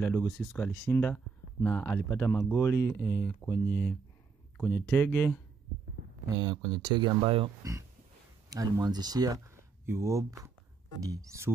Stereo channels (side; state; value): left; quieter; 4.9 dB